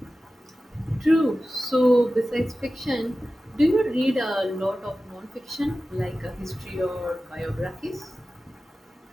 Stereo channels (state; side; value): normal; both; correlation 0.95